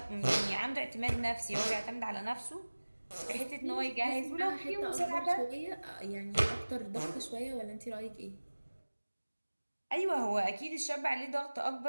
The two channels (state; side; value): inverted; both; correlation -1.00